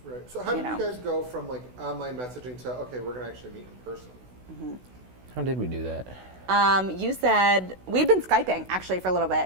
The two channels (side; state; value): left; late; 16 ms